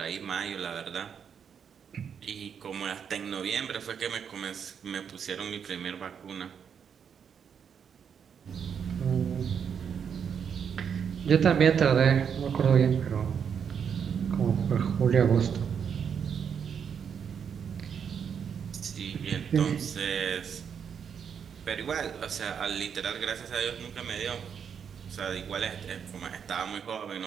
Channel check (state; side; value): quieter; left; 7.4 dB